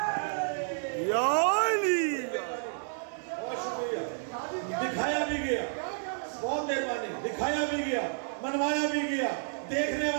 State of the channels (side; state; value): left; silent; digital silence